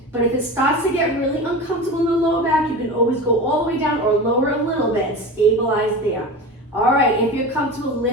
But if it starts to get really uncomfortable in the lower back, you can always go all the way down or lower a little bit and stabilize there. All right, if you're comfortable,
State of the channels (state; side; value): normal; both; correlation 0.29